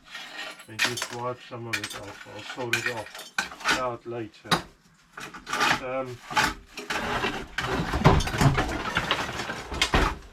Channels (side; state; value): both; identical; correlation 1.00